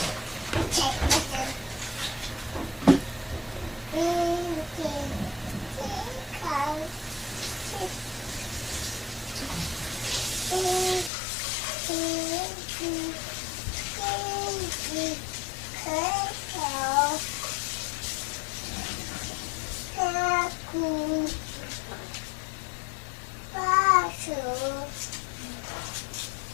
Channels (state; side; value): drops out; right; at 11.1 s